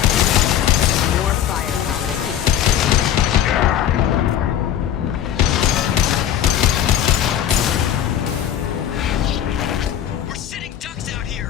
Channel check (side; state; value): right; quieter; 10.3 dB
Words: More firepower to keep We're sitting ducks out